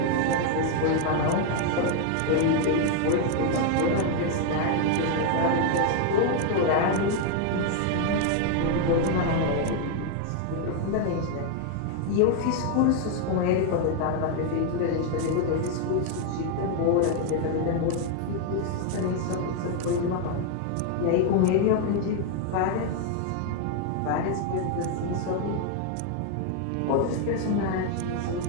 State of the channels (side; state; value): both; different; correlation 0.00